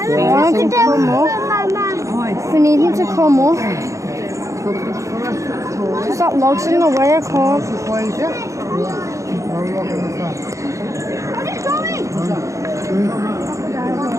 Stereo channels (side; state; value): left; late; 0.15 ms